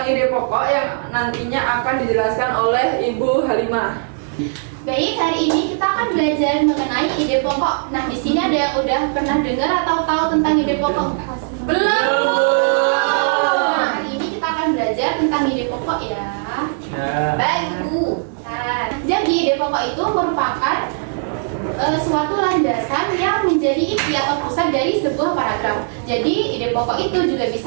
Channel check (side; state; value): left; silent; 67 dB below the other